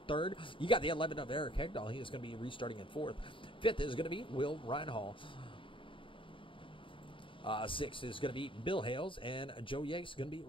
third. You got the 11 of Eric Hegdahl. He is going to be restarting in fourth. Fifth is going to be Will Reinhall. Sixth is going to be Bill Hales, and Joe Yates is going to be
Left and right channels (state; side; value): late; right; 0.25 ms